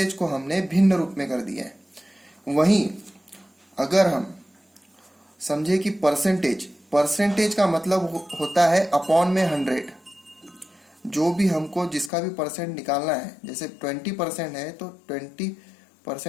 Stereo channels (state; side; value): drops out; right; at 12.1 s